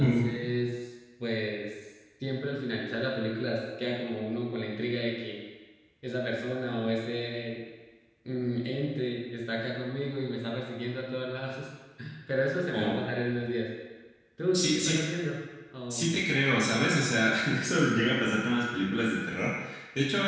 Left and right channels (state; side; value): identical; both; correlation 1.00